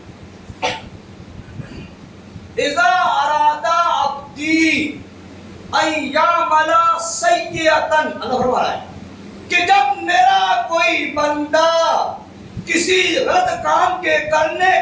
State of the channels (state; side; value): identical; both; correlation 1.00